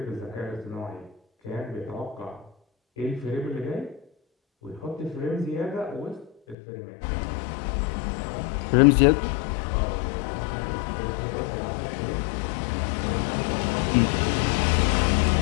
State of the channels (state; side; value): drops out; right; at 6.6 s